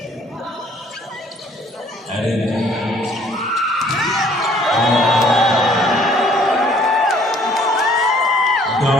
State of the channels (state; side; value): normal; both; correlation 0.59